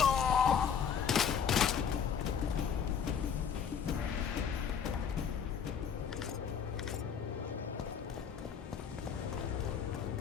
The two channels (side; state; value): right; quieter; 7.4 dB